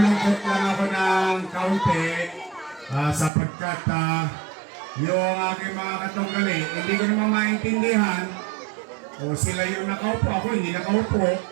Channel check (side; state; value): left; drops out; at 3.3 s